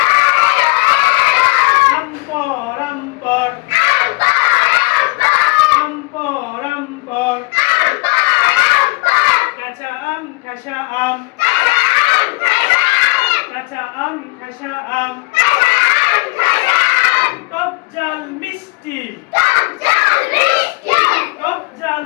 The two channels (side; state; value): right; quieter; 25.8 dB